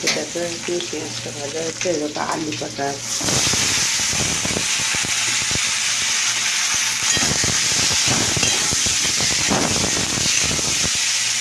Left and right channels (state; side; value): identical; both; correlation 1.00